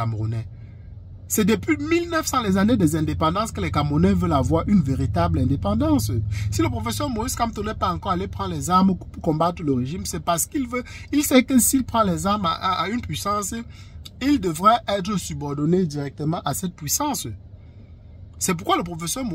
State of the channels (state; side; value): identical; both; correlation 1.00